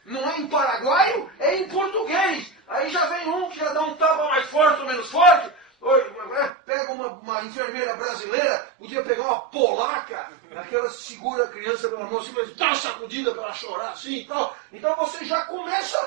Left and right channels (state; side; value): drops out; left; at 6.5 s